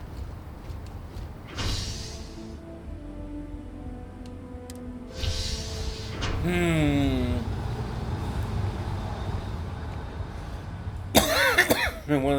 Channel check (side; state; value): both; identical; correlation 1.00